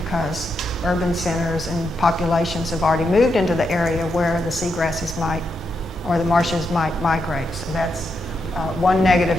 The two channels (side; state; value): both; normal; correlation 0.83